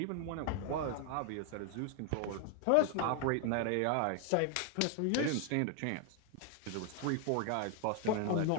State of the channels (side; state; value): both; different; correlation 0.00